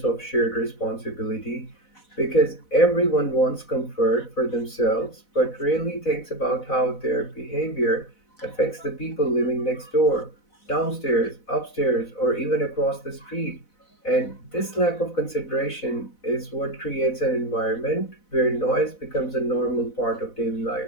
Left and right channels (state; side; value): late; right; 4.0 ms